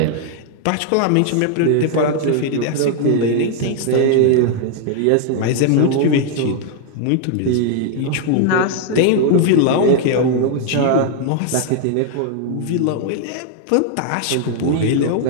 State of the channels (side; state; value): both; different; correlation 0.00